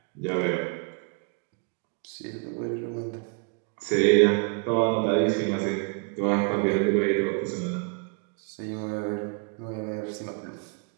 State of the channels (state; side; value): quieter; left; 36.2 dB